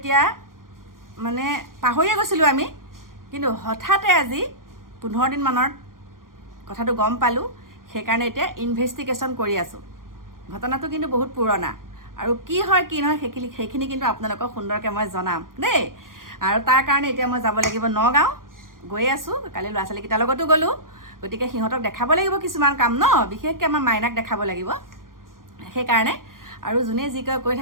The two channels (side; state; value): left; late; 0.91 ms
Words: মানে পাহৰিয়ে গৈছিলোঁ আমি, কিন্তু হঠাতে আজি 15 দিনমানৰ কথাটো গম পালোঁ। সেইকাৰণে এতিয়া ইনভেষ্টিগেশ্যন কৰি আছোঁ। ঘটনাটো কিন্তু বহুত পুৰণা, আৰু কি হয় কি নহয় সেইখিনি কিন্তু আপোনালোকক সুন্দৰকৈ মই জনাম দেই। আৰু তাৰ কাৰণে এতিয়া মই যাব লাগিব নগাঁও, গৈ আছোঁ। কালি ল'ৰা ছোৱালীকেইটাৰ লগতো গ'লোঁ। গতিকে সিহঁতক দেখাব লাগিব কিছুমান কাম ন, বিশেষকৈ আমাৰ মাইনাক দেখাব লাগিব। সেইকাৰণে আৰু যোনে যি কয় কৈ